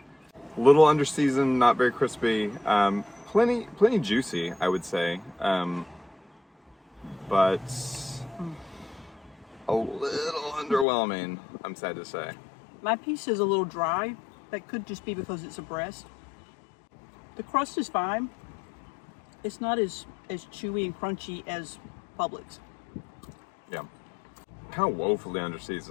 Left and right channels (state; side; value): drops out; right; at 10.9 s